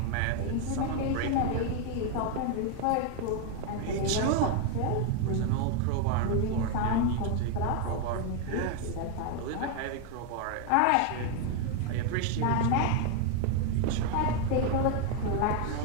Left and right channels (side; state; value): both; different; correlation 0.01